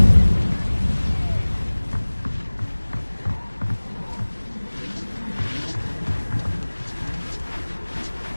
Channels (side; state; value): both; inverted; correlation -1.00